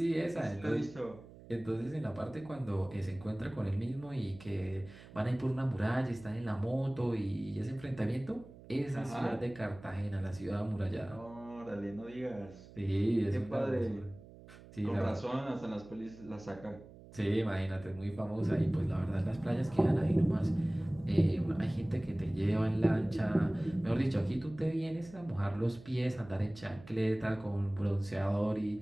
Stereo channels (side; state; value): right; noise; hum, 19 dB below the sound